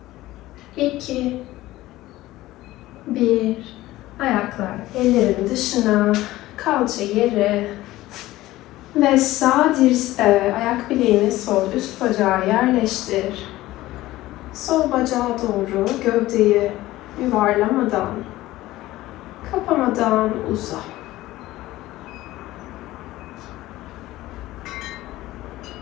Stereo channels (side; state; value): right; quieter; 16.7 dB